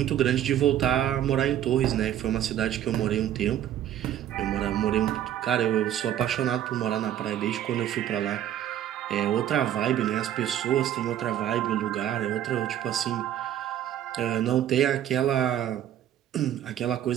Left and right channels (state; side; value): quieter; left; 11.3 dB